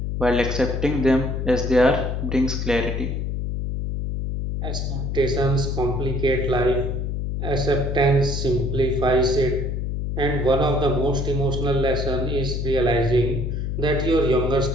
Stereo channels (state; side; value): noise; left; hum, 2 dB below the sound